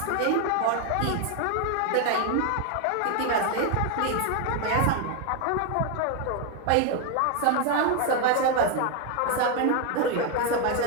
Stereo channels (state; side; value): different; both; correlation 0.01